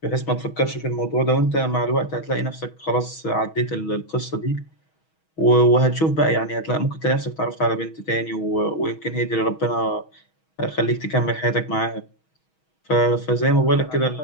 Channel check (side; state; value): right; late; 6.3 ms